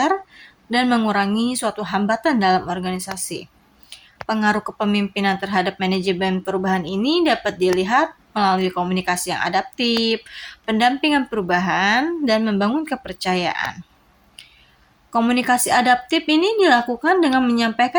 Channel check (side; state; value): both; identical; correlation 1.00